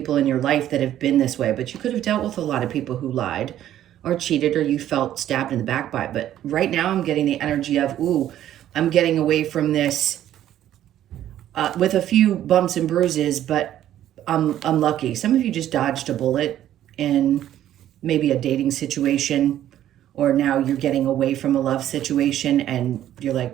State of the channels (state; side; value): quieter; left; 11.9 dB